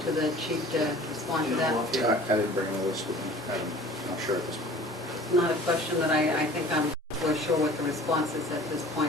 to the chief to respond to that. Yeah, I didn't bring a list with me. I'm not sure at this point. It's not a question that I think I'm for sure what the response is at this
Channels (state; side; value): normal; both; correlation 0.46